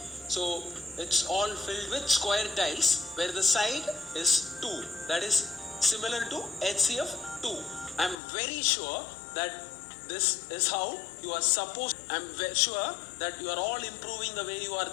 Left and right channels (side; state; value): right; drops out; at 8.2 s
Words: So it's all filled with square tiles where the side is 2. That is similar to HCF 2. I'm very sure that this is how you are supposed. I'm sure that you are all improving the way you are